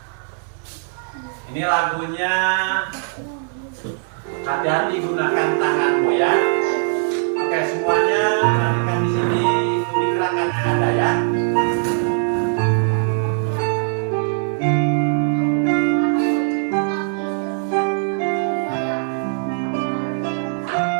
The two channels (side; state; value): left; silent; 60 dB below the other